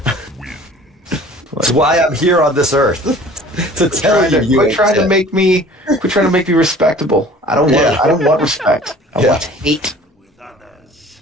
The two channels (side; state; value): both; normal; correlation 0.48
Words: That's why I'm here on this earth. To tell you, Quit trying to make me respectable. I don't want respect. I want hate.